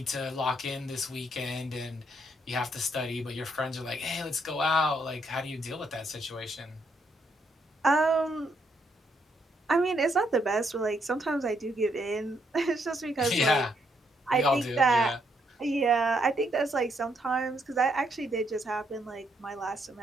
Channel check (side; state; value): both; normal; correlation 0.74